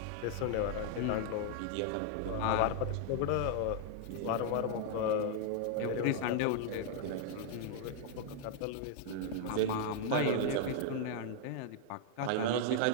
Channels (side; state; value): both; different; correlation 0.00